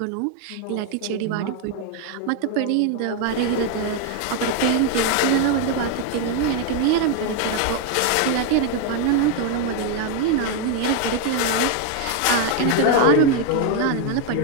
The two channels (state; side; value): different; both; correlation 0.01